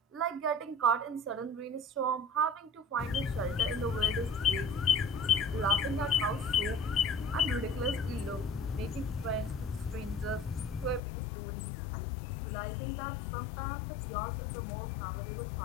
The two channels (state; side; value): drops out; right; at 11.0 s